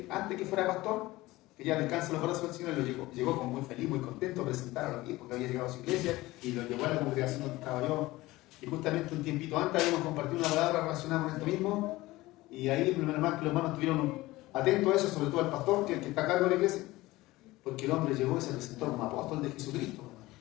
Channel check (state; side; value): quieter; right; 18.9 dB